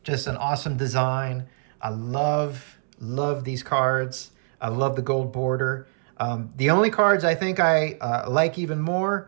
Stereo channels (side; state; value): left; silent; 62 dB below the other